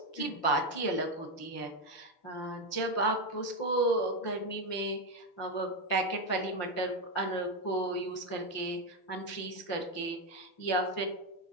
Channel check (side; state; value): right; late; 5.8 ms